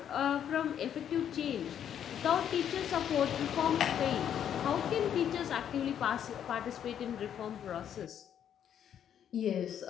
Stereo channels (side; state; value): right; quieter; 9.4 dB